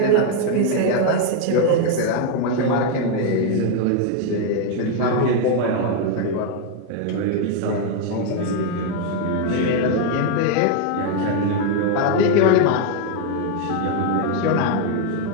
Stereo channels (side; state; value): both; different; correlation 0.01